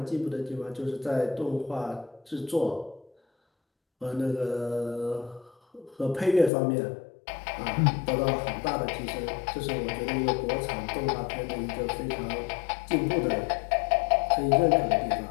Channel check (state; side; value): drops out; right; at 6.5 s